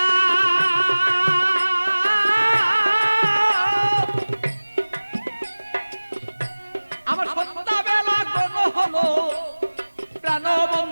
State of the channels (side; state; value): both; inverted; correlation -1.00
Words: আমার সন্ধ্যাবেলা কোন হলো, প্রাণ